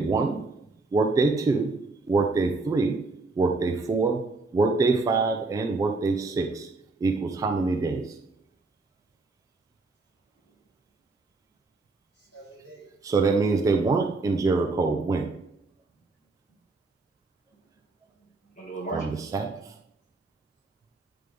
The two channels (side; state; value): left; quieter; 3.5 dB